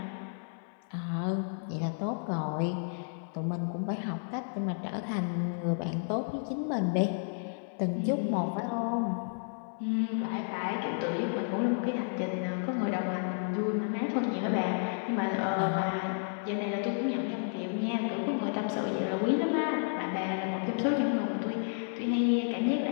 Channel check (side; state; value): right; silent; 57 dB below the other